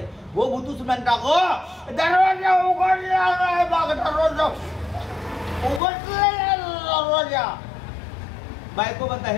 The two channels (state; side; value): drops out; right; at 5.8 s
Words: हो भूतूच म्हणता हो दरवाजा उघडला नाही बघ, दरवाजा उघडला दरवाजा. बायको म्हणता हे